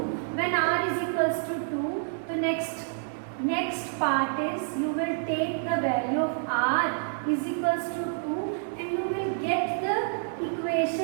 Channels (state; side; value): silent; left; digital silence